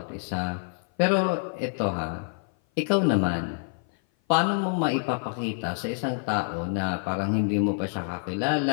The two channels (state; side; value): silent; right; 56 dB below the other